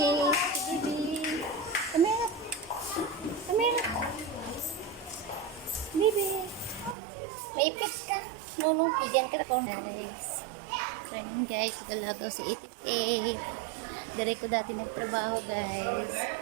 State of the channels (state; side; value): drops out; left; at 7.0 s